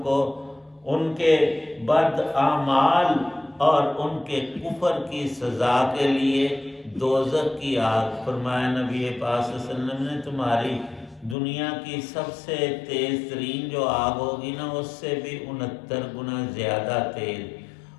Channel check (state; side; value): drops out; right; at 11.4 s